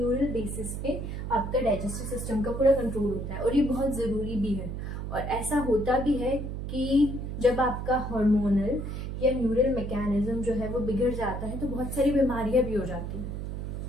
बेसिस पे आपका डाइजेस्टिव सिस्टम का पूरा कंट्रोल होता है, और ये बहुत ज़रूरी भी है। और ऐसा होता भी है कि जब आपका हार्मोनल या न्यूरल मैकेनिज्म जो है वो बिगड़ जाता है तो बहुत सारी बीमारियां भी हो जाती हैं।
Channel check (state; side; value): noise; right; hum, 5 dB below the sound